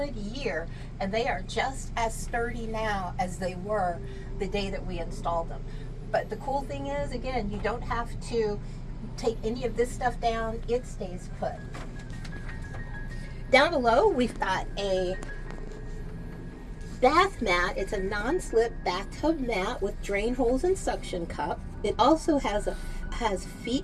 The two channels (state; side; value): identical; both; correlation 1.00